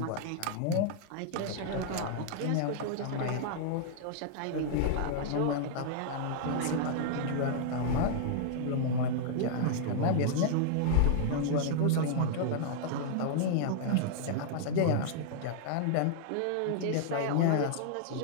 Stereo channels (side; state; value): both; different; correlation -0.01